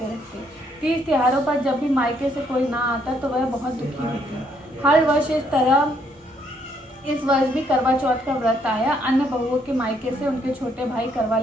रहते। 30 त्योहारों पर जब भी मायके से कोई ना आता तो वह बहुत दुखी होती। हर वर्ष इस तरह इस वर्ष भी करवा चौथ का व्रत आया। अन्य बहुओं के मायके से उनके छोटे भाई करवा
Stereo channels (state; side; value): normal; both; correlation 0.70